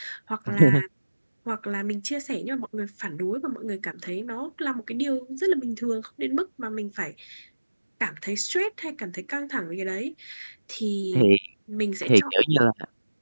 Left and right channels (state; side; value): inverted; both; correlation -1.00